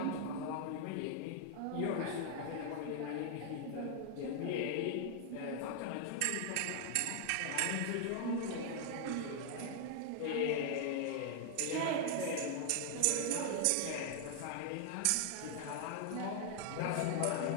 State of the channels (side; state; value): both; different; correlation 0.00